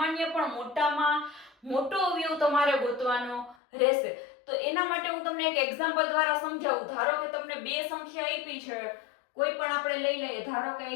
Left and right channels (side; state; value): right; drops out; at 3.6 s